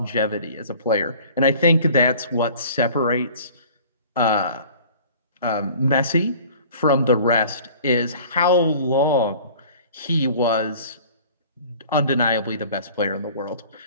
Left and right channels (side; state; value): both; inverted; correlation -0.47